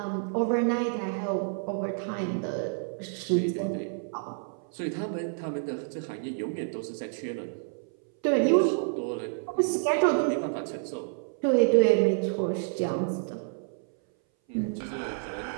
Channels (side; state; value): left; silent; 59 dB below the other